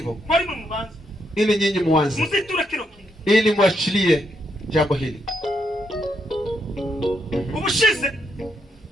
ili nyinyi muanze, ili muachilie jambo hili.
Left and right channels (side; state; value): both; normal; correlation 0.78